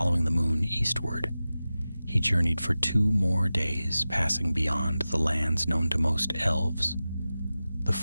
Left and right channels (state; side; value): inverted; both; correlation -0.95